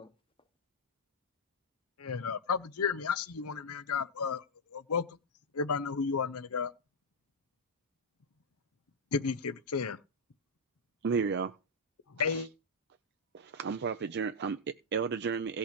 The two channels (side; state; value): both; normal; correlation -0.04